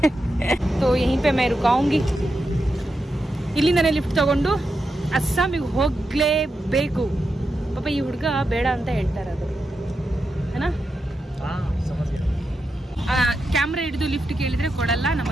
तो यहीं पे मैं रुकाऊंगी. ಇಲ್ಲಿಂದನೇ ಲಿಫ್ಟ್ ತಗೊಂಡು ಅಸ್ಸಾಮಿಗೆ ಹೋಗ್ಲೇಬೇಕು. ಪಾಪ ಈ ಹುಡುಗ ಬೇಡ ಅಂತ ಹೇಳ್ತಾರೆ ಅದು ಏನಾ. ಕ್ಯಾಮ್ರಾ ಹಿಡಿದು ಲಿಫ್ಟ್ ಕೇಳಿದ್ರೆ ಕೊಡಲ್ಲ, ನಮ್ಮ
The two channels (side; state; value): both; normal; correlation 0.87